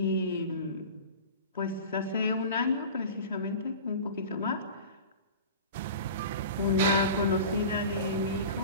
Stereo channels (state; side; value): inverted; both; correlation -0.36